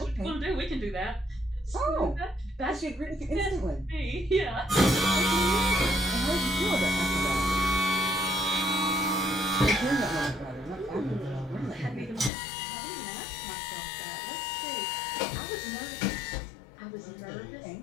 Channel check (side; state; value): right; drops out; at 12.3 s